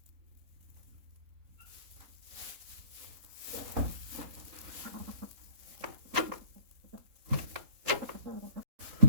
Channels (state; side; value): late; left; 3.8 ms